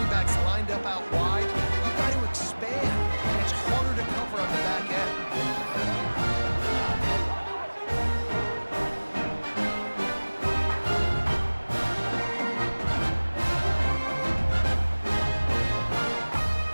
backs lined up out wide. You've got to expand, and it's harder to cover on the back end.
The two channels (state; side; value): inverted; both; correlation -1.00